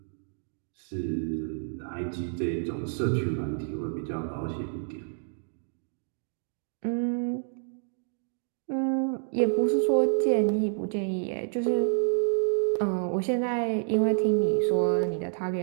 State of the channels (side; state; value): left; silent; 59 dB below the other